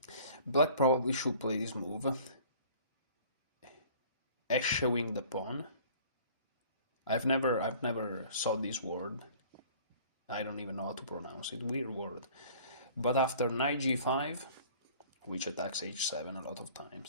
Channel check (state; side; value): inverted; both; correlation -0.49